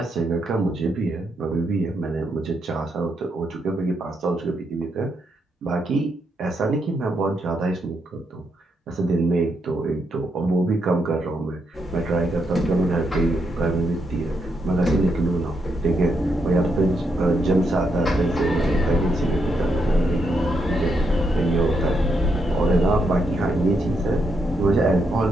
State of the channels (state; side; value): normal; both; correlation 0.80